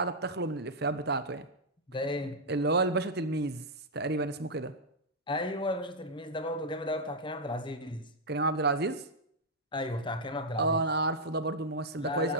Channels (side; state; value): both; normal; correlation -0.03